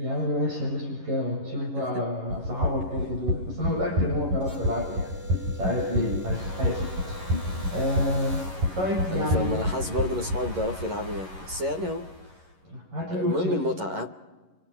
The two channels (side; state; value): left; late; 11 ms